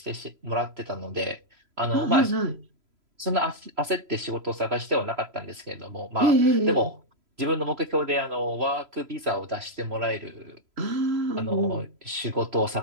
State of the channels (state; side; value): late; left; 3.0 ms